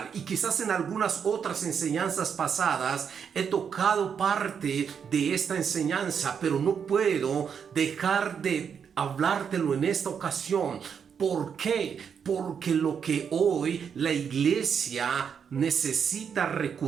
Y quizás en algunas otras enseñanzas pasadas he tocado parte de esta enseñanza, pero no puedo dejar de hablártelo en esta ocasión. ¿Por qué? Porque lo que hoy la iglesia necesita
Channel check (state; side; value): quieter; left; 7.1 dB